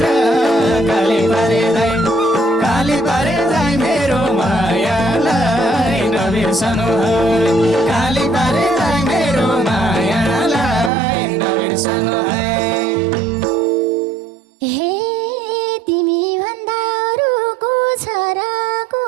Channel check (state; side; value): drops out; left; at 10.9 s